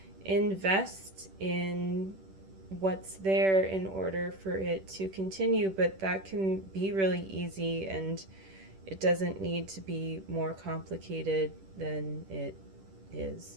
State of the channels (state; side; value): late; left; 10 ms